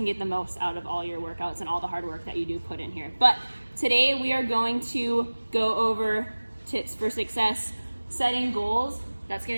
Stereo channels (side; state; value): both; inverted; correlation -1.00